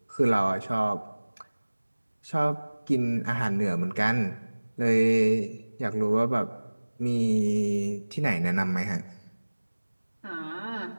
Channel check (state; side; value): inverted; both; correlation -1.00